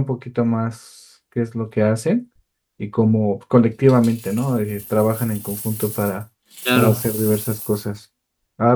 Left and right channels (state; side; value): identical; both; correlation 1.00